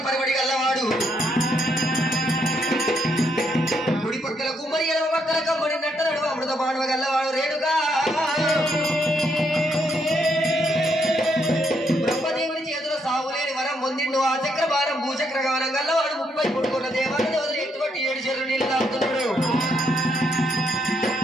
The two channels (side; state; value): both; normal; correlation 0.75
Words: పరిబడి గల్లవాడు. కుడి పక్కల కుమ్మరి ఎడమ పక్కల కమ్మడి నట్టనడు అమృత మానవ గల్లవాడు రేణుగా. బ్రహ్మదేవుని చేతుల సావులేని వరం పొందిండు ఆ చక్రభారం భూచక్రగానం గల్లవాడు 30 కోట్ల దేవాల దేవతలు ఎత్తుబట్టి 7 చెరువులు నీళ్ళు తాగుతున్నాడు.